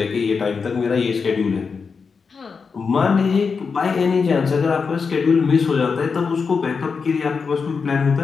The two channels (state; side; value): quieter; right; 5.3 dB